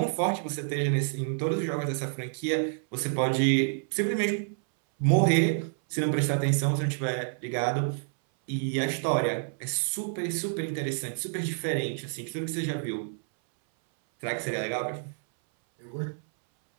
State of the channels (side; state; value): left; silent; 59 dB below the other